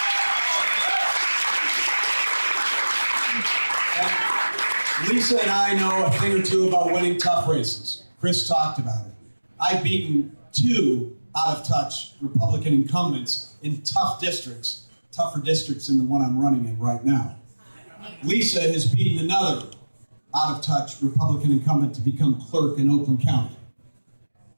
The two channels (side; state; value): both; inverted; correlation -1.00